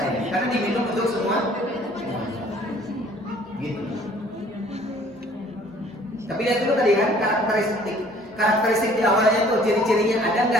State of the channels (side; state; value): both; normal; correlation 0.55